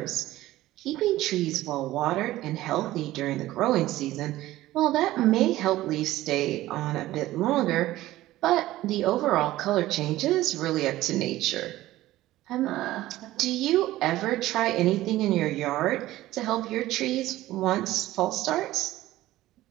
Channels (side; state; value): left; quieter; 16.0 dB